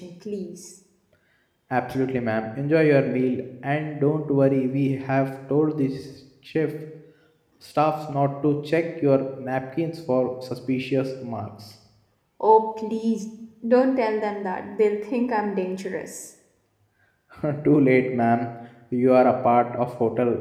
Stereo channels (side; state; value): both; identical; correlation 1.00